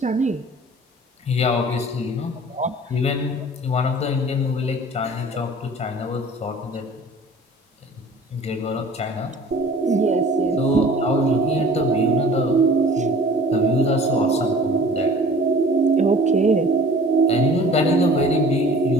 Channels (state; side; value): normal; both; correlation 0.46